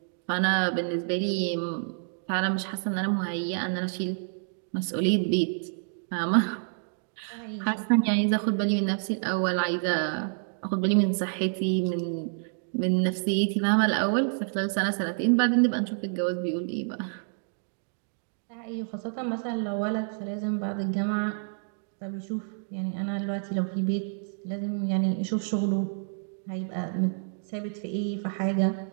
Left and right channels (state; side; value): silent; left; digital silence